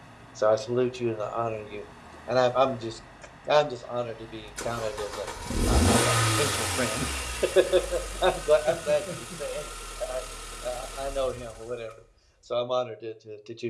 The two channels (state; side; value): identical; both; correlation 1.00